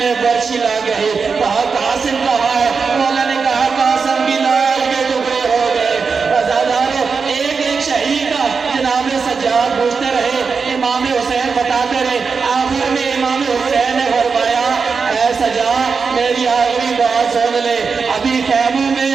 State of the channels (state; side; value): quieter; left; 5.2 dB